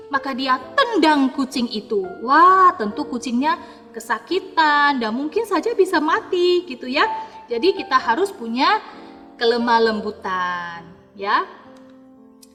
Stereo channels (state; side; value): identical; both; correlation 1.00